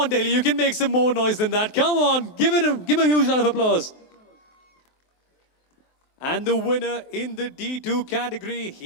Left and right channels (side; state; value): right; late; 23 ms